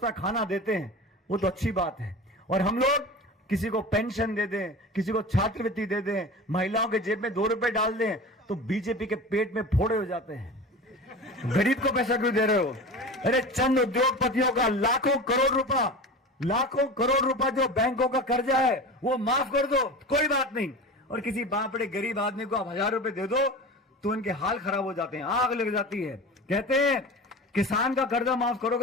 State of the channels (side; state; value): both; normal; correlation 0.32